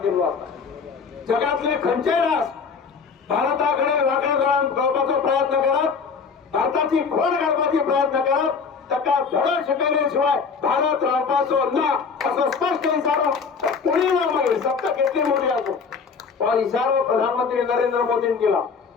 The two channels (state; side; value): quieter; right; 5.5 dB